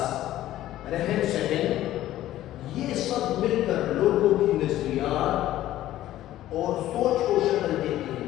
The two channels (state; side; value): quieter; right; 13.9 dB